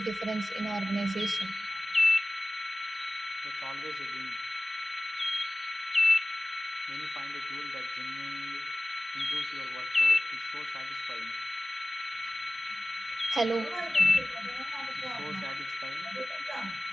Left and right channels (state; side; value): normal; both; correlation 0.97